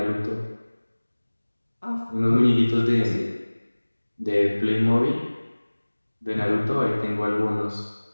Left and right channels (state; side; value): inverted; both; correlation -1.00